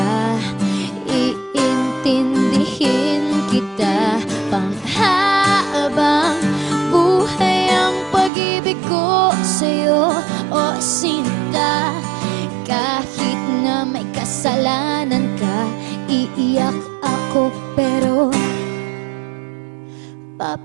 iintindihin kita. Panghabang buhay ang pag-ibig ko sa'yo, o sinta. Kahit na may kasalanan ka, iiyak ako pero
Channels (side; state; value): left; drops out; at 8.3 s